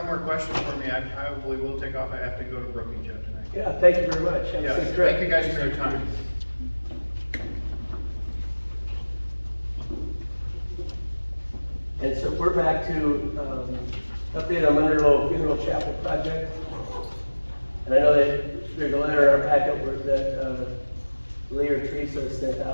more questions for me, I probably will take off. I have to go to Brookings yet tonight. Yeah, thank you very much. Have a Yeah, safe trip. thank you guys for your time. And so we're back to, update on Monroe Funeral Chapel project. And I know that there's a letter in our packet that, Lee or Teresa sent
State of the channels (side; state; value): both; inverted; correlation -1.00